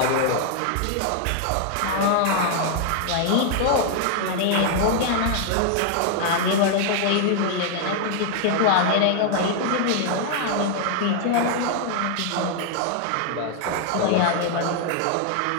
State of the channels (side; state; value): both; different; correlation 0.00